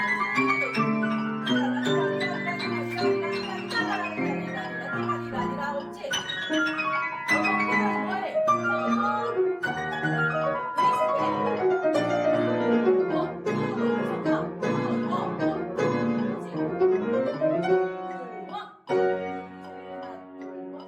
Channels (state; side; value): identical; both; correlation 1.00